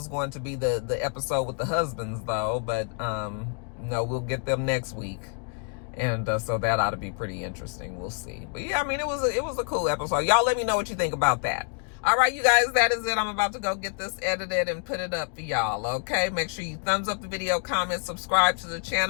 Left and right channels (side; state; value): right; quieter; 38.6 dB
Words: going to be the episode with the husbands, though, but no, we'll get them next week. And so that ought to be pretty interesting. We'll see. But yeah, I mean, it was a cool episode. Y'all let me know what you think about that. All right, you guys, that is it. I'm about to go get this edited and put it up for y'all, okay? Make sure you thumbs up the video, comment, subscribe to the